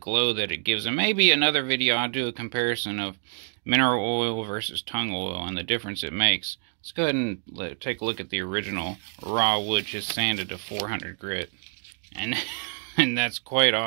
that it gives. And maybe another video I'll do a comparison of mineral oil versus tongue oil and the difference it makes. Let's go ahead and take a look at the original raw wood just sanded to 400 grit. And that's quite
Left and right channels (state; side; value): silent; left; digital silence